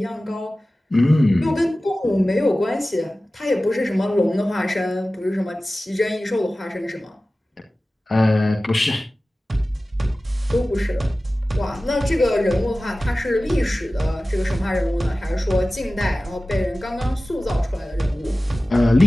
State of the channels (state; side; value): normal; both; correlation 0.96